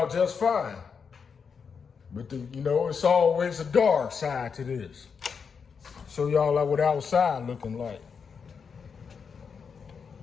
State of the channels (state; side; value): quieter; right; 6.0 dB